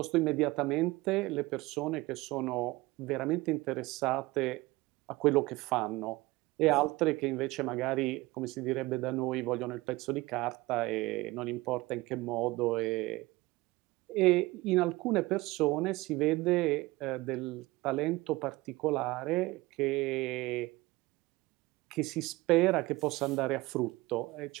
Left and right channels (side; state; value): left; quieter; 20.6 dB